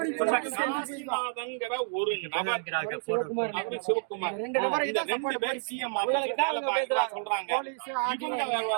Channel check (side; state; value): left; silent; digital silence